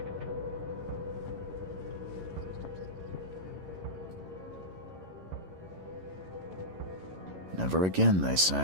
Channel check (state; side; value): late; left; 11 ms